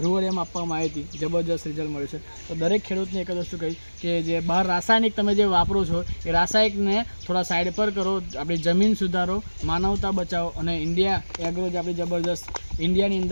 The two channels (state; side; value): inverted; both; correlation -1.00